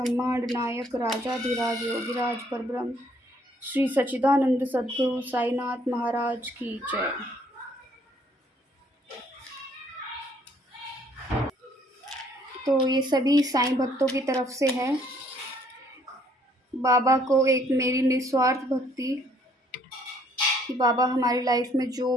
नायक राजाधिराज योगिराज परब्रह्म श्री सच्चिदानंद सद्गुरु साईनाथ महाराज की जय। तो ये सभी साईं भक्तों की तरफ से है। बाबा को एक मेरी निस्वार्थ भक्ति कि बाबा हमारी लाइफ में जो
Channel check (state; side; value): normal; both; correlation 0.64